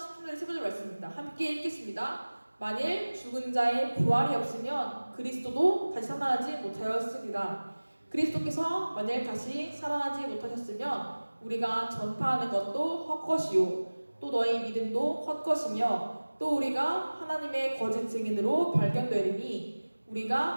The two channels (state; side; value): inverted; both; correlation -1.00